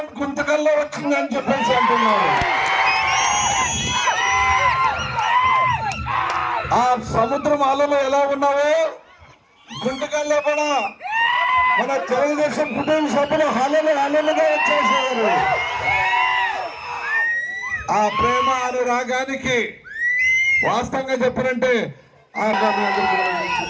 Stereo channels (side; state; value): both; identical; correlation 1.00